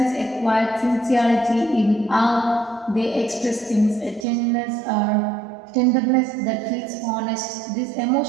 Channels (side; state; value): left; drops out; at 4.2 s